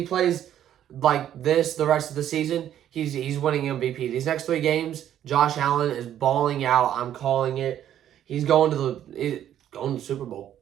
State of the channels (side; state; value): left; quieter; 10.9 dB